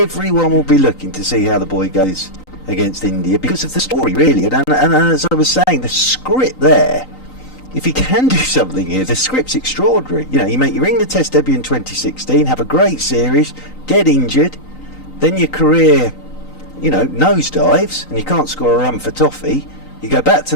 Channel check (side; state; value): right; late; 3.9 ms